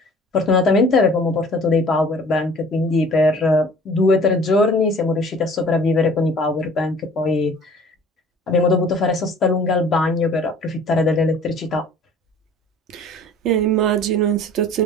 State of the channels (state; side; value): normal; both; correlation 0.49